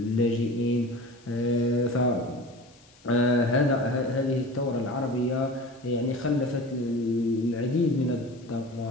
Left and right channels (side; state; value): left; noise; hiss, 28 dB below the sound